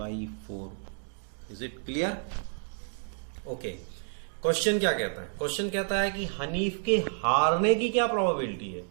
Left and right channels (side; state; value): left; silent; digital silence